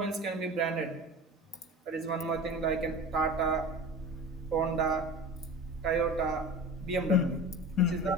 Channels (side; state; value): both; normal; correlation 0.34